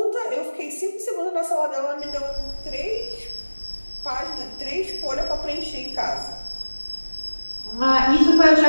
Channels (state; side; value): inverted; both; correlation -1.00